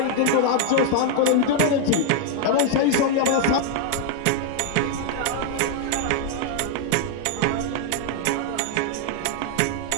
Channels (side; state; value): both; different; correlation 0.00